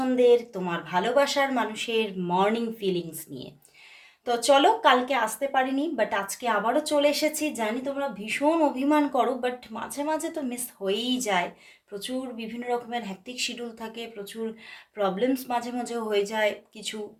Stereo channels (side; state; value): both; identical; correlation 1.00